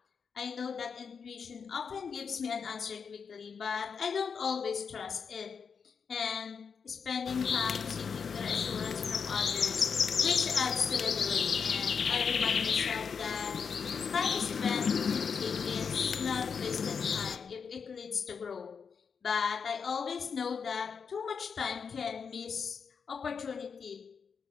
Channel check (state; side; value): quieter; right; 6.1 dB